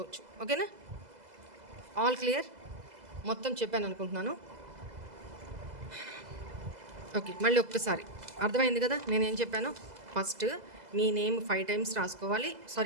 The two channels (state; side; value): late; left; 2.0 ms